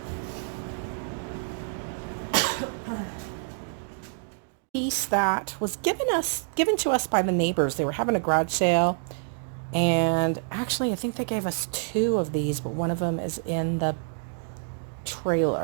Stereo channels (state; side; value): silent; left; digital silence